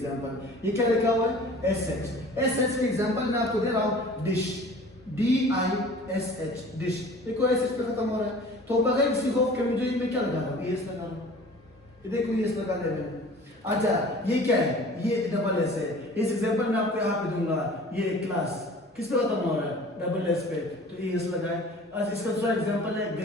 ये क्या लिखा हुआ है? S H. एस एच का एग्जांपल मैं आपको दे रहा हूँ, dish, D I S H, dish. देखो एस एच पे खत्म हो रहा है तो बगैर किसी खौफ के मुझे मैं क्या लगा रहा हूँ? एस लगा रहा हूँ। ये देखो एस लगा दे रहे हैं। अच्छा, ये क्या है? ये डबल एस है। इस एग्जांपल में आपको यहाँ पे दूंगा, ये क्लास किस पे खत्म हो रहा है? डबल एस पे, तो एस लगा है। अच्छा, इसका दूसरा एग्जांपल है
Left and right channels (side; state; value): both; normal; correlation 0.45